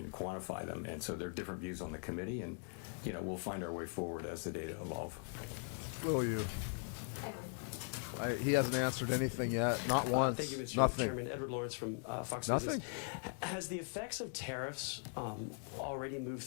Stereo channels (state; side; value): silent; right; 51 dB below the other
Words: quantify them. And so there are different views on the committee, and we'll find our way forward as the data evolve. Will you? He hasn't answered anything yet. Not once. Thank you, Mr. Nothing. Chairman. Edward Lawrence from Fox Nothing. Business. Has the effects of tariffs already moved